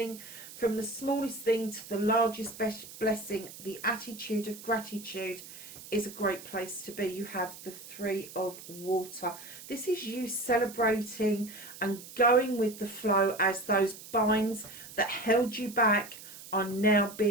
from the smallest thing to the largest blessing. The attitude of gratitude is a great place to be. You have the 3 of water. This is you celebrating and going with the flow as those binds that held you back are now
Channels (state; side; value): noise; right; hiss, 15 dB below the sound